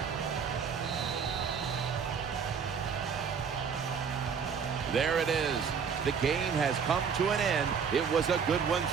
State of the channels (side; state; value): left; quieter; 6.4 dB